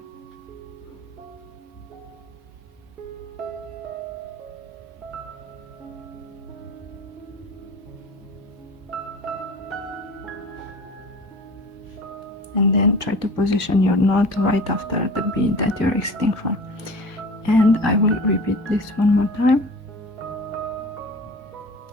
And then try to position your knot right after the bead that you're exiting from. And I will repeat this one more time.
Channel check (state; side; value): normal; both; correlation 0.39